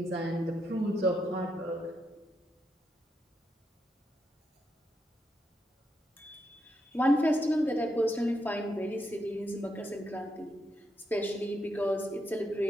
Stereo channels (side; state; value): both; normal; correlation 0.82